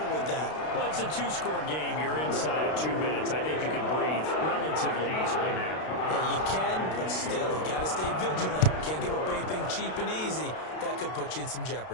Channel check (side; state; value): right; late; 32 ms